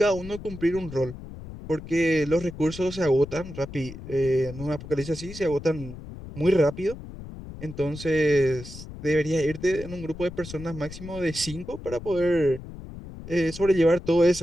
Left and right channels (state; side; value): noise; left; rumble, 13 dB below the sound